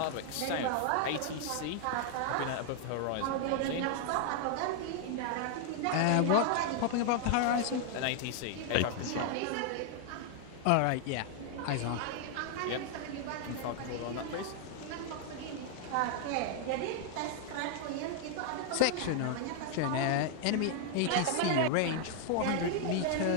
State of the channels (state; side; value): different; both; correlation 0.00